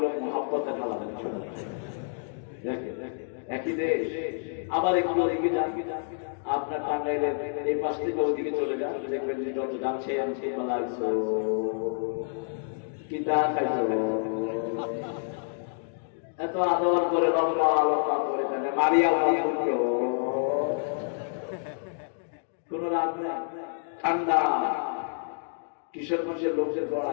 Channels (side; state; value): right; silent; digital silence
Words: মহাব্বতের হালা। একই দেশ। আবার একটু ওদিকে যান, আপনার টাঙ্গাইলের এই পাশ থেকে ওদিকে চলে যান, দেখবেন যে যত যাচ্ছে আমি লাগছো কি দা খাইছো, এত আদর করে লম্বা লম্বা করে থাকে মারিয়া কোন রাত নেই, ঠান্ডা। কিশোরগঞ্জের লোকদের